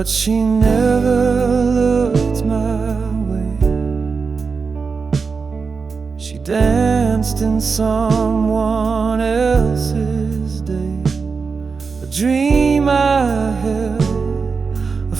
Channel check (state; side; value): quieter; left; 5.0 dB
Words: she never looked my way. She danced in someone else's day, a dream I held, a